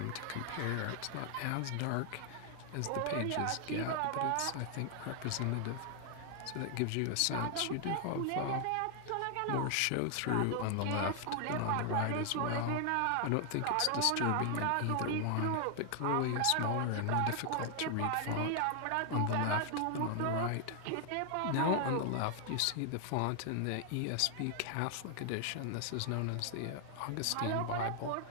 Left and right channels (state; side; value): different; both; correlation 0.00